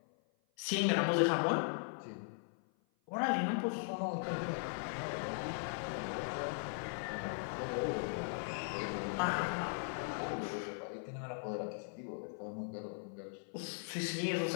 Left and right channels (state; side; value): silent; right; 52 dB below the other